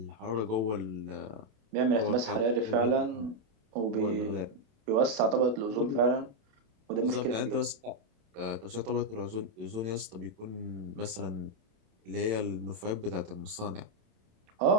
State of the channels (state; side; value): late; left; 27 ms